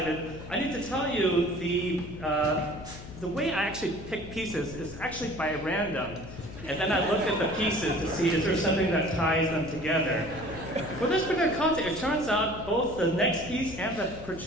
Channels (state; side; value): noise; left; hum, 14 dB below the sound